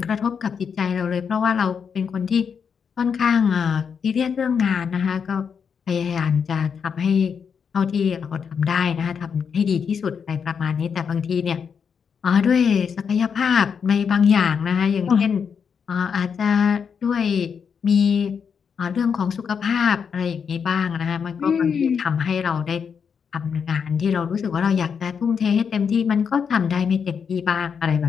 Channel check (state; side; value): quieter; right; 6.6 dB